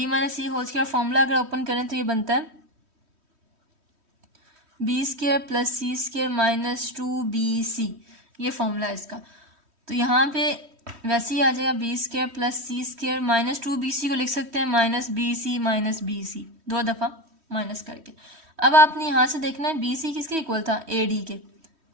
माइनस सी होल स्क्वायर फॉर्मूला अगर ओपन करें तो ये बनता है B square plus C square minus 2bc, ये फॉर्मूला है इसका। तो यहाँ पे वैसे ही आ जाएगा B square plus C square minus 2bc को लिख सकते हैं माइनस बी सी, दो दफ़ा माइनस करके। अब आपने यहाँ से देखना है बी सी किसके इक्वल था, ए डी के।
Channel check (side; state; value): left; late; 3.1 ms